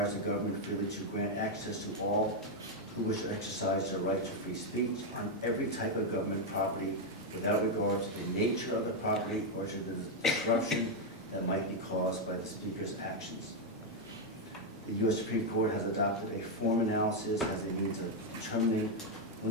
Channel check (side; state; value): both; normal; correlation 0.02